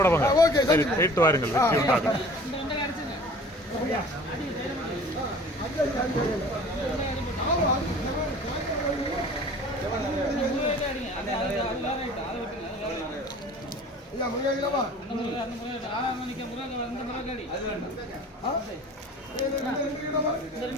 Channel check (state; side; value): normal; both; correlation 0.45